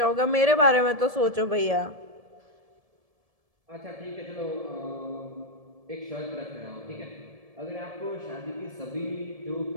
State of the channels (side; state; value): left; late; 1.7 ms